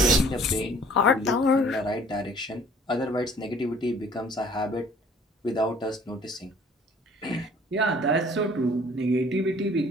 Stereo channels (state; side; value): normal; both; correlation 0.54